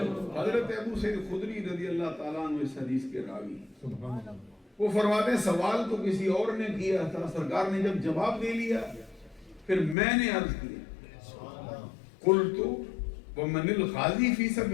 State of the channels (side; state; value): right; drops out; at 10.0 s